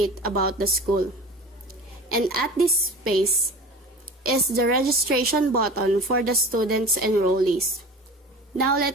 about the school. And at this space is the registration button for the students enrollees. Now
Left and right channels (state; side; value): normal; both; correlation 0.37